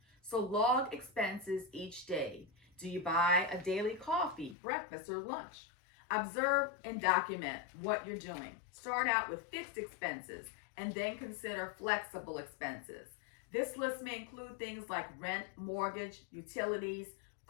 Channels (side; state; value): right; drops out; at 4.5 s